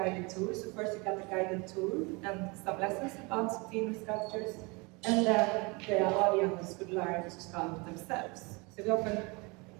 tour. So first you got the guided tour and some lessons about female sculptures, and then the audience could learn to sculpt themselves. So we often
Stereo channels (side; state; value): left; quieter; 27.8 dB